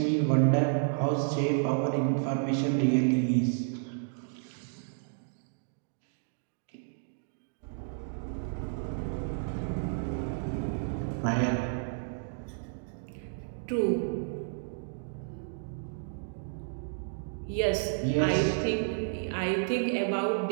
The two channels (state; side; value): silent; left; digital silence